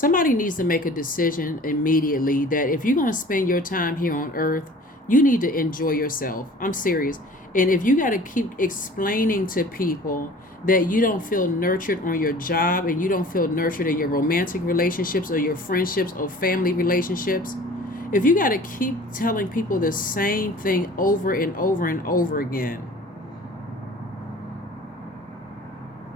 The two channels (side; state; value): both; normal; correlation 0.46